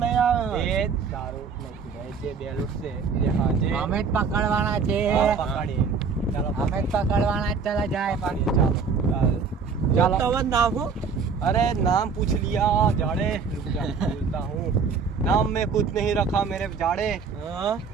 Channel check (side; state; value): left; quieter; 5.5 dB